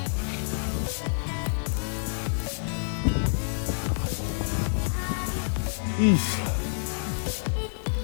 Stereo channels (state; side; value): silent; right; 57 dB below the other